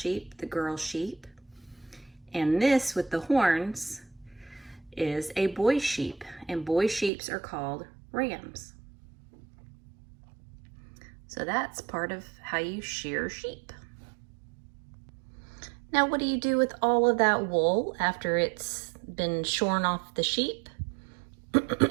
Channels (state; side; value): drops out; left; at 7.1 s